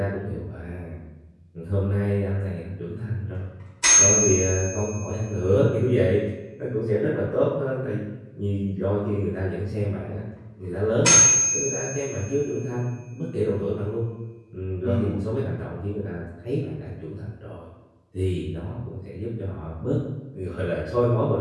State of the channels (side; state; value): both; identical; correlation 1.00